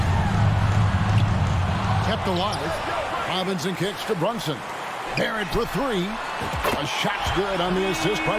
Kept alive. Robinson kicks to Brunson. Barrett for 3. A shot's good on the assist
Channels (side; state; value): both; identical; correlation 1.00